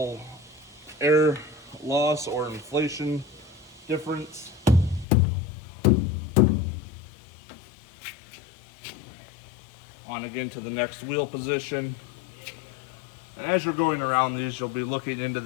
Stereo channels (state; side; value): drops out; right; at 5.1 s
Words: air loss or inflation difference. On again to the next wheel position. And as you're going around these, you'll be looking into